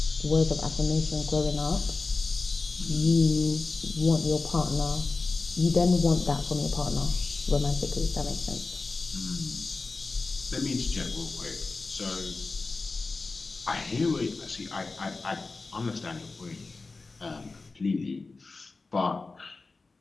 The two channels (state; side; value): quieter; right; 3.8 dB